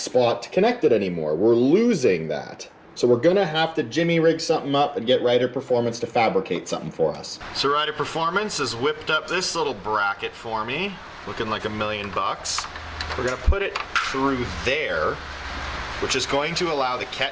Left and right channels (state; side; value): identical; both; correlation 1.00